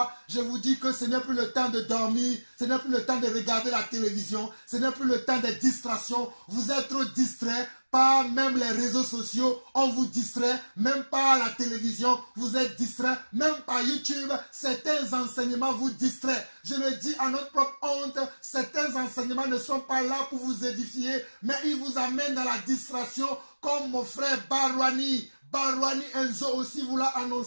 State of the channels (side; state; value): both; inverted; correlation -1.00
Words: je vous dis que ce n'est plus le temps de dormir, ce n'est plus le temps de regarder la télévision, ce n'est plus le temps des distractions. Vous êtes trop distraits par même les réseaux sociaux, on vous distrait, même par la télévision, vous êtes distrait, même par YouTube, certains enseignements vous distraient. Je le dis à notre propre honte, certains enseignements ne sont pas là pour vous édifier, mais ils vous amènent dans la distraction, comme mon frère Barwani Enzo aussi vous l'a